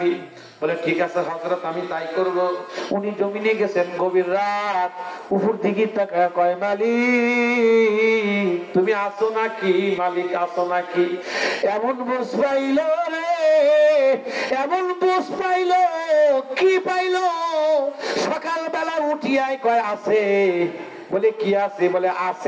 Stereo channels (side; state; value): both; identical; correlation 1.00